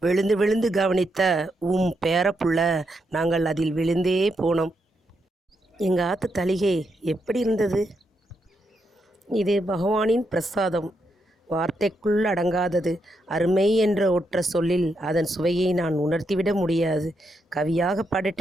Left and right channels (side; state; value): both; normal; correlation 0.81